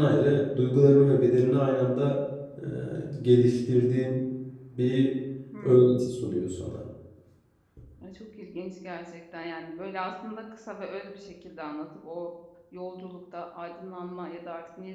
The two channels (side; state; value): both; identical; correlation 1.00